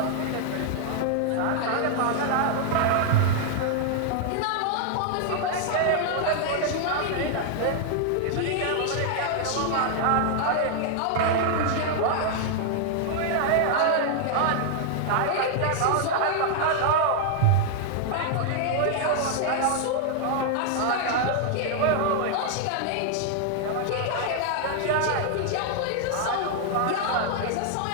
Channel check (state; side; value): different; both; correlation 0.00